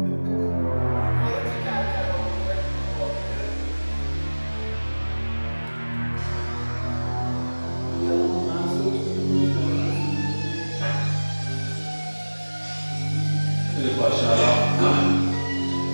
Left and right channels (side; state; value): both; inverted; correlation -1.00